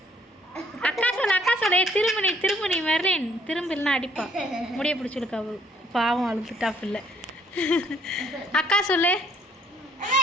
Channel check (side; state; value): both; normal; correlation 0.64